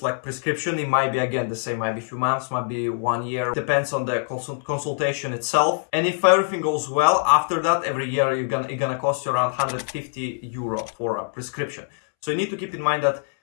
like prescription. It might be again the same, might be a few months, might be 1 year, depends on the consultation itself. And if everything goes well, after that, every year it's gonna cost you around 150 euro for a prescription. So you need to keep in mind that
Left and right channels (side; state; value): right; silent; 63 dB below the other